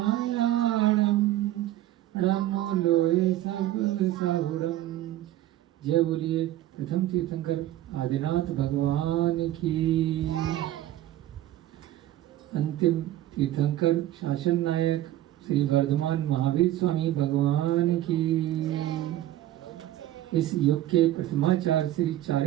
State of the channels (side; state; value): left; quieter; 13.9 dB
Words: नमो लोई सब साहुरम। जय बोलिए प्रथम तीर्थंकर आदिनाथ भगवान की। अंतिम तीर्थंकर शासन नायक श्री वर्धमान महावीर स्वामी भगवान की। इस युग के प्रथमाचार्य श्री